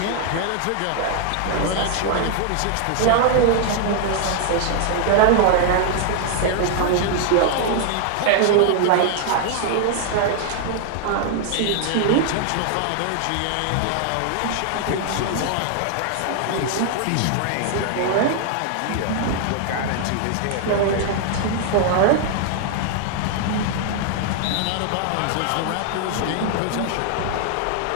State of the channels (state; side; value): different; both; correlation 0.00